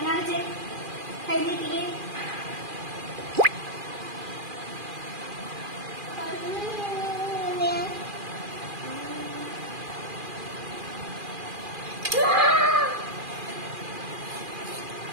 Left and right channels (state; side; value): late; left; 2.4 ms